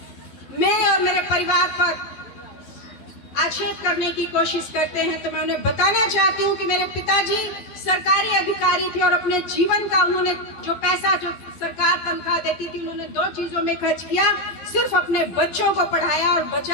मेरे और मेरे परिवार पर आक्षेप करने की कोशिश करते हैं तो मैं उन्हें बताना चाहती हूँ कि मेरे पिताजी सरकारी अधिकारी थे और अपने जीवन का उन्होंने जो पैसा, जो सरकार तनख्वाह देती थी, उन्होंने दो चीजों में खर्च किया, सिर्फ अपने बच्चों को पढ़ाया और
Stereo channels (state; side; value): late; right; 12 ms